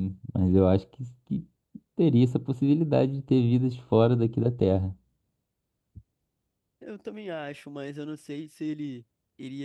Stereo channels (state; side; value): identical; both; correlation 1.00